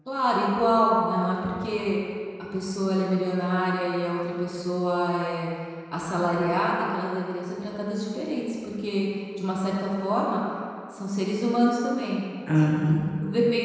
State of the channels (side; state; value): both; identical; correlation 1.00